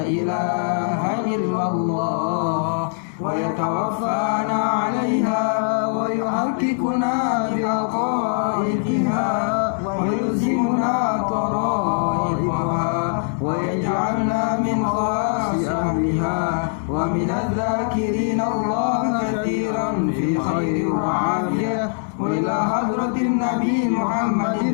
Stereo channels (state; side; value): silent; right; digital silence